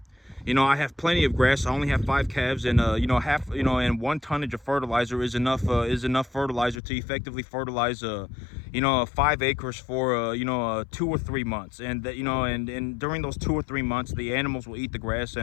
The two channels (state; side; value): drops out; right; at 6.8 s